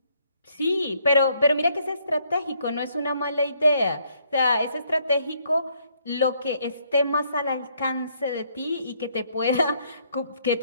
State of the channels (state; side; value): inverted; both; correlation -0.69